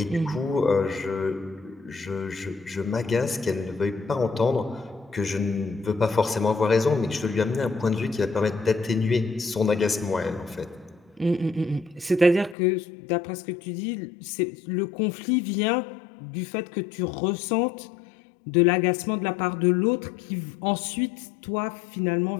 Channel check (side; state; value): right; drops out; at 12.6 s